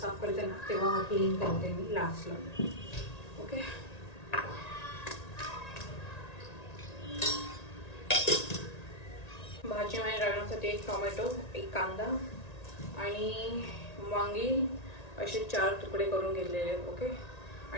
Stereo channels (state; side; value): late; right; 1.9 ms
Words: करते ना तेव्हा हा क्लीन करते मी लास्टला. ओके, भाजीमध्ये टाकण्यासाठी 1 टोमॅटो, 1 कांदा आणि वांगी असे 4 तुकडे करून घेतलेले आहेत. ओके,